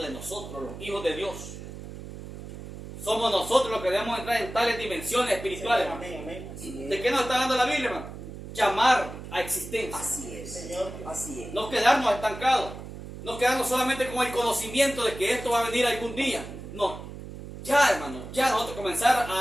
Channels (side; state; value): right; noise; hum, 12 dB below the sound